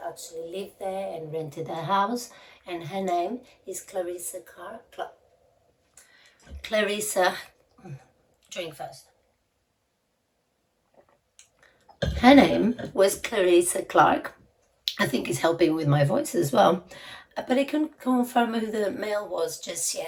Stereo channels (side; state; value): both; identical; correlation 1.00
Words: actually lived there and rented the house, and her name is Charlisa. Drink first. Her name was Charlisa Clark. I think it's helping with my voice as well. But I couldn't confirm who the male was just